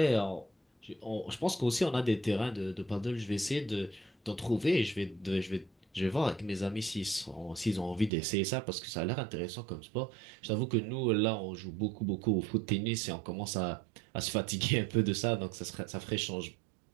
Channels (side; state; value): left; drops out; at 8.1 s